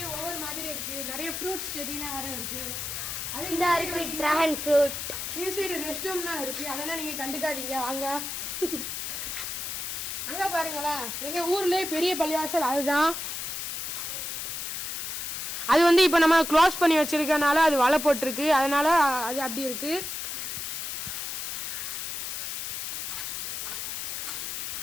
ஒவ்வொரு மாதிரி இருக்கு. நிறைய ஃப்ரூட்ஸ் செடினா வேற இருக்கு. அது இந்த இருக்கு டிராகன் ஃப்ரூட். இந்த சைடு ரெஸ்ட் ரூம்லாம் இருக்கு. அதெல்லாம் நீங்க கண்டுக்காதீங்க. வாங்க அங்க பாருங்களா எங்க ஊர்லயே பெரிய பள்ளிவாசல் அதுதான். அது வந்து இப்ப நம்ம க்ளோஸ் பண்ணி வச்சிருக்கனால அது வலை போட்டிருக்கு. அதனால அது அப்படி இருக்கு.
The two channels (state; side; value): noise; left; hiss, 4 dB below the sound